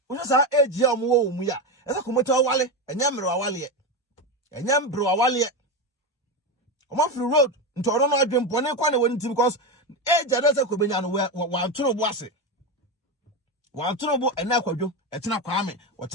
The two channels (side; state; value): both; normal; correlation 0.15